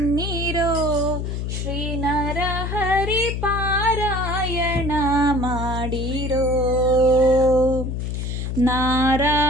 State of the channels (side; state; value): left; noise; hum, 3 dB below the sound